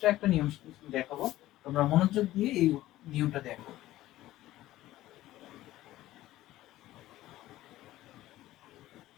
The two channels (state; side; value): quieter; right; 15.4 dB